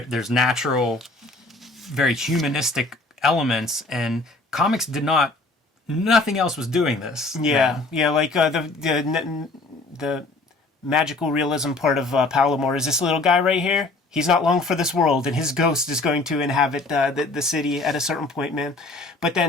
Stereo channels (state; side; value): quieter; right; 3.2 dB